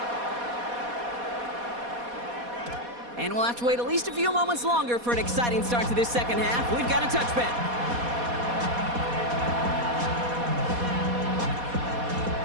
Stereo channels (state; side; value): late; left; 4.2 ms